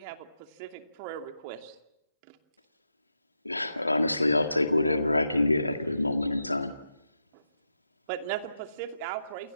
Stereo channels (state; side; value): inverted; both; correlation -0.85